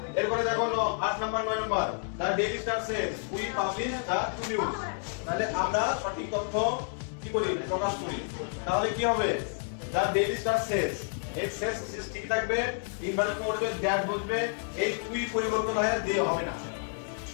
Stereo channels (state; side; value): silent; right; 58 dB below the other